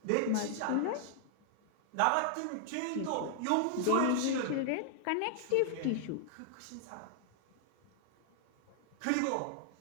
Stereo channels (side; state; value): both; different; correlation 0.00